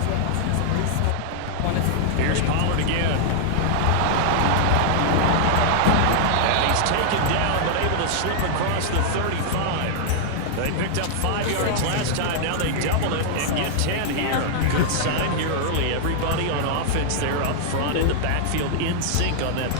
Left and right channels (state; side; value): different; both; correlation -0.01